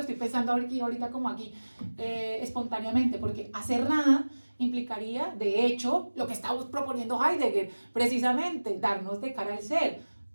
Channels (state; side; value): inverted; both; correlation -1.00